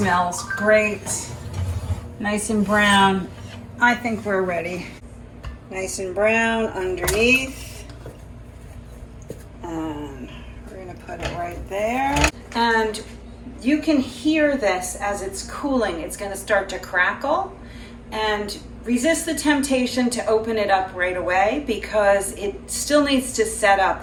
great. Nice and brown. I think we're ready. Nice and brown underneath. And we're gonna put it right there. And you can hear this as it's cooling. It's gonna start to crackle. And resist the temptation to open it up right away because it still needs to set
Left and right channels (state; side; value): identical; both; correlation 1.00